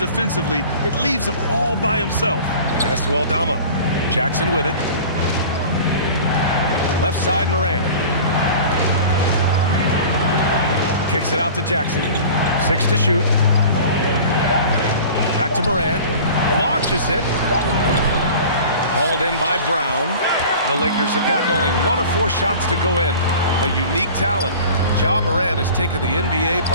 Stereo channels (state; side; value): inverted; both; correlation -0.40